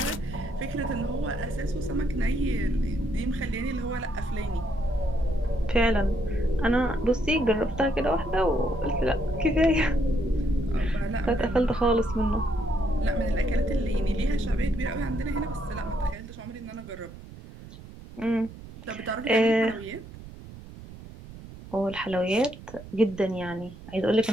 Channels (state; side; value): noise; right; rumble, 16 dB below the sound